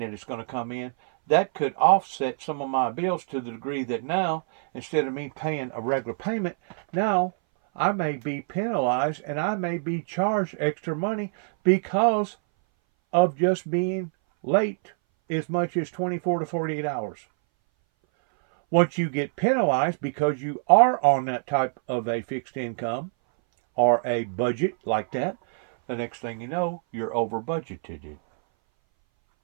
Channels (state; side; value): silent; left; 60 dB below the other